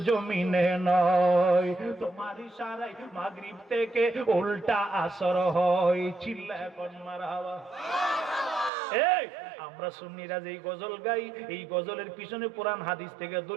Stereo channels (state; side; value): drops out; left; at 8.7 s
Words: জমিনে নয়, তোমার ইশারায় মাগরিব থেকে উল্টা আসর হয়। চিল্লায় কোন মারহাবা। এই আমরা সুন্নিরা যেই গজল গাই, এই গজলের পিছনে কোরআন হাদিস থেকে